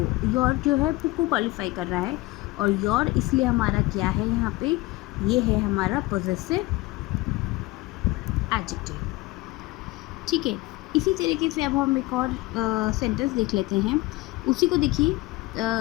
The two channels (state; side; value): quieter; right; 20.5 dB